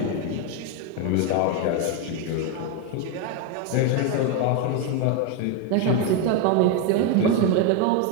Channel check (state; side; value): different; both; correlation 0.02